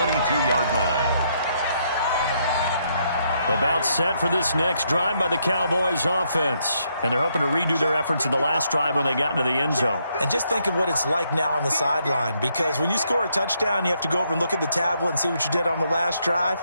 line. About set for this next drive by the Cowboys offense. And they're hoping to redo their efforts in the last drive when they got into the end zone. And just think of what it's like now on the sideline, because when you score a touchdown, you have to go over and look at the tablet and see what you did on the last drive.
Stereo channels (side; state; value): both; inverted; correlation -0.75